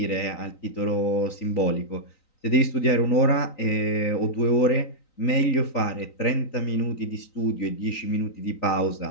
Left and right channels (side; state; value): right; late; 3.9 ms